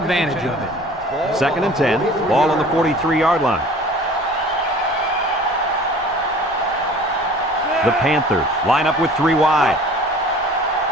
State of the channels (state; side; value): normal; both; correlation 0.45